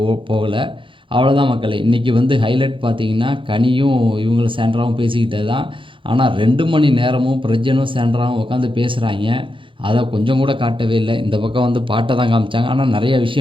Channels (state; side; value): late; left; 0.25 ms